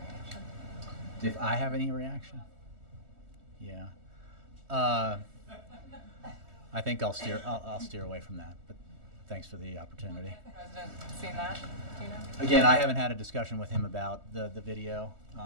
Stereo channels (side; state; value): left; late; 3.2 ms